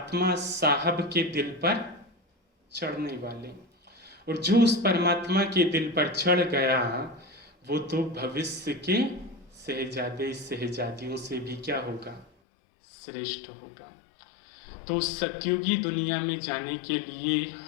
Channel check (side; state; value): right; drops out; at 12.2 s